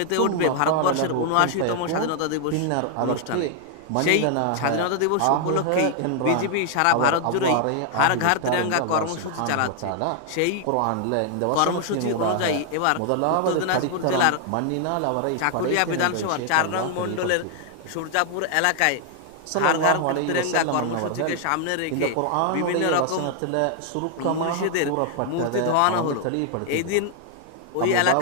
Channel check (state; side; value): different; both; correlation 0.00